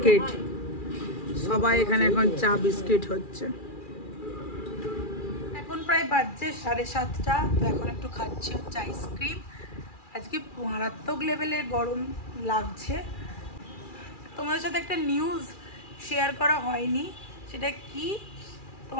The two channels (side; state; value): right; late; 2.4 ms